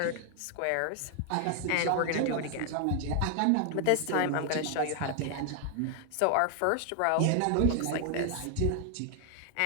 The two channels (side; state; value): both; different; correlation 0.00